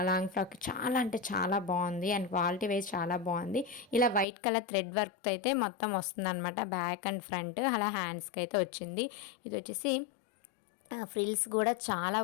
లాంగ్ ఫ్రాక్ చాలా అంటే చాలా బాగుంది. అండ్ క్వాలిటీ వైజ్ చాలా బాగుంది. ఇలా వైట్ కలర్ థ్రెడ్ వర్క్ అయితే మొత్తం వస్తుంది అనమాట, బ్యాక్ అండ్ ఫ్రంట్. అలా హ్యాండ్స్కి అయితే వచ్చింది. ఇది వచ్చేసి ఫ్రిల్స్ కూడా చాలా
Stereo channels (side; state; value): right; drops out; at 4.2 s